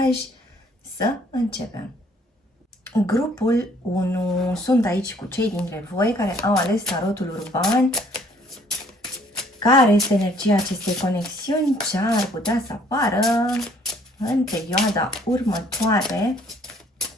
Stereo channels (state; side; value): normal; both; correlation 0.61